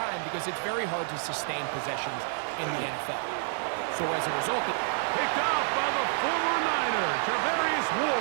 because it's very hard to sustain possessions in the NFL. So as a result, picked off by the former Niner, Tarvarius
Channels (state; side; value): silent; left; 59 dB below the other